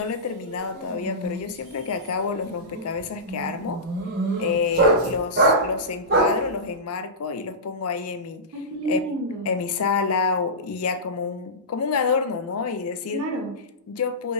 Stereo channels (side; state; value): both; normal; correlation -0.18